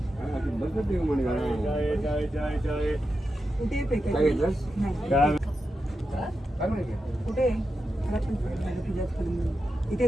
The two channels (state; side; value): normal; both; correlation 0.89